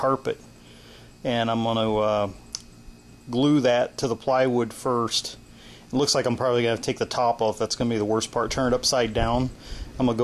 And I'm going to glue that to the plywood first. It looks like I'm probably going to take the top off. That's going to be the worst part. Turn it upside down. I'm going to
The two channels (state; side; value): identical; both; correlation 1.00